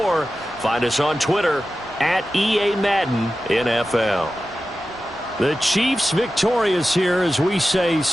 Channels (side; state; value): both; normal; correlation 0.93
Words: find us on Twitter at EA Madden NFL. The Chiefs victorious here as we say